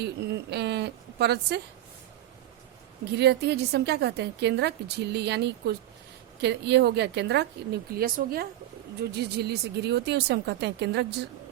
परत से घिरी रहती है जिसे हम क्या कहते हैं, केंद्रक झिल्ली। यानी ये हो गया केंद्रक, न्यूक्लियस हो गया, जो जिस झिल्ली से घिरी होती है उसे हम कहते हैं केंद्रक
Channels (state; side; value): quieter; left; 13.6 dB